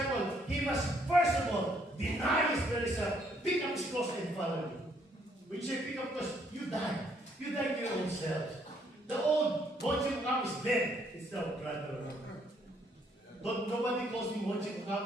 he must first of all deny his very self, pick up his cross and follow me. When you say pick up because you die. You die to your own self. The old Monte is dead. It's now brother. Nobody calls me Monte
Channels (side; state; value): both; normal; correlation 0.68